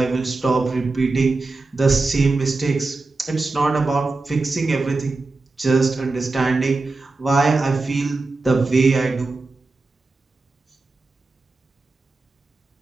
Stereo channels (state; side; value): quieter; left; 3.5 dB